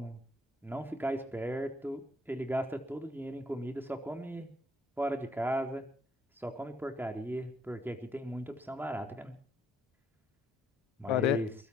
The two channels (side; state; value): both; normal; correlation 0.70